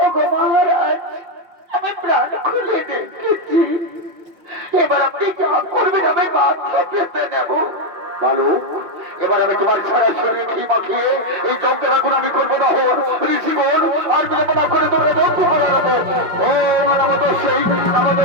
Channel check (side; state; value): left; late; 5.4 ms